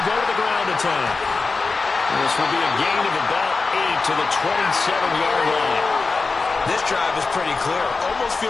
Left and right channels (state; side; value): quieter; right; 4.1 dB